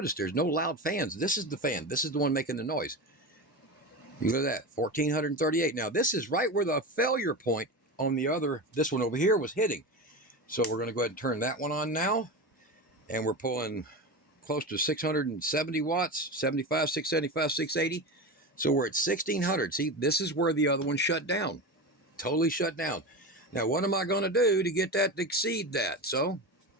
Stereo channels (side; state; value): both; normal; correlation 0.23